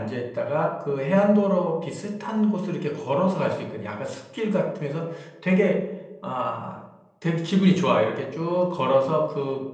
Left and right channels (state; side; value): identical; both; correlation 1.00